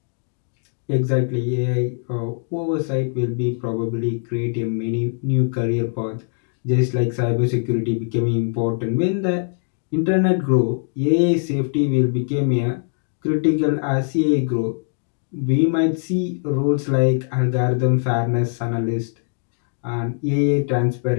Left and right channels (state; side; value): silent; right; digital silence